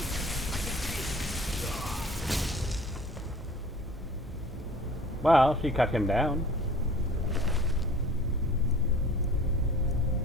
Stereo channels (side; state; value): both; normal; correlation 0.47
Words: Well, she cut him down.